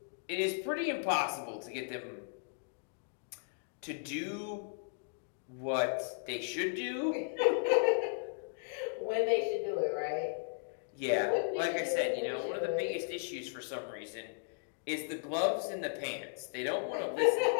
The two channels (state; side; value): silent; right; digital silence